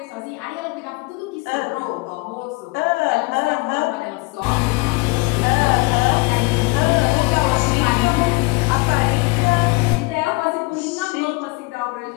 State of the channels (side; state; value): right; quieter; 25.9 dB